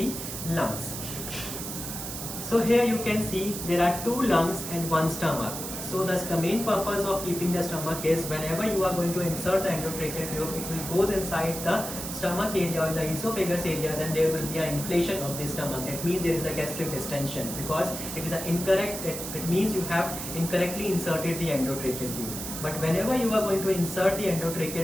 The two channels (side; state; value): right; noise; hiss, 7 dB below the sound